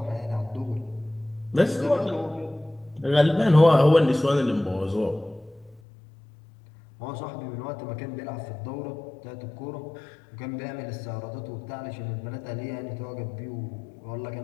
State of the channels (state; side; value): drops out; right; at 5.8 s